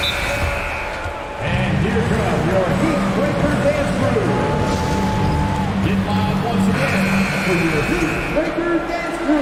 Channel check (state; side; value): identical; both; correlation 1.00